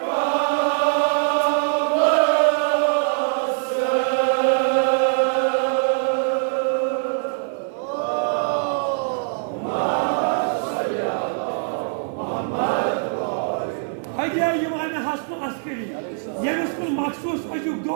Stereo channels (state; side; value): silent; left; 57 dB below the other